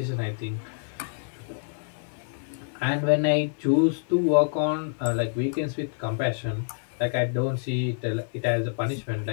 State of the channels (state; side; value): silent; right; digital silence